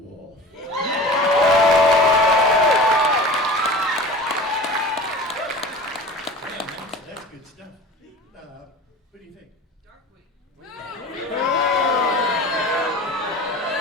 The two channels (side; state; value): both; normal; correlation 0.38